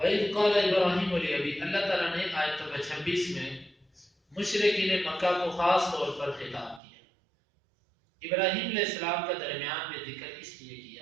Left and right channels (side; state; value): left; drops out; at 6.8 s